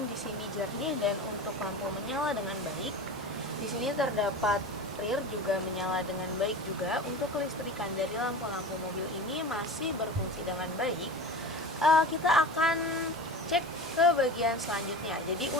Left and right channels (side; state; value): both; normal; correlation 0.32